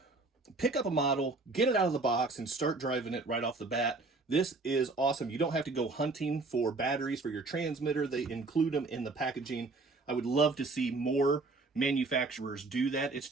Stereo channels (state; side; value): quieter; left; 3.5 dB